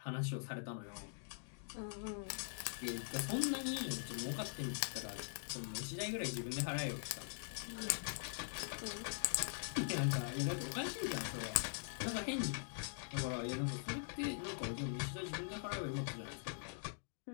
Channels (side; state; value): right; silent; digital silence